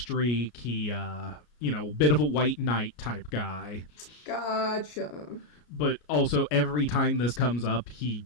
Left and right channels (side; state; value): right; late; 33 ms